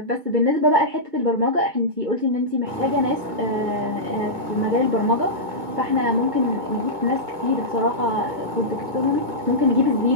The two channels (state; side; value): late; left; 2.2 ms